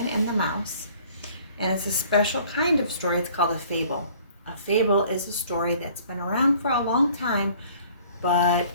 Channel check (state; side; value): inverted; both; correlation -0.54